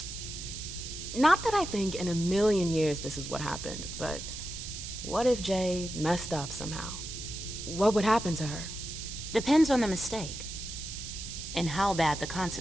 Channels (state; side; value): noise; right; hiss, 8 dB below the sound